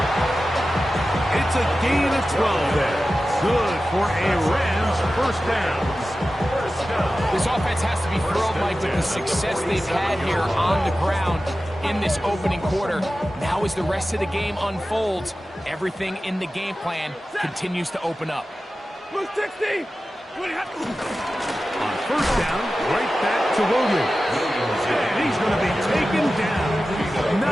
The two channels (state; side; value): normal; both; correlation 0.94